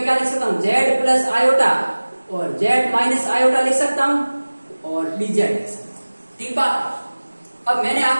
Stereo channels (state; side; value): inverted; both; correlation -1.00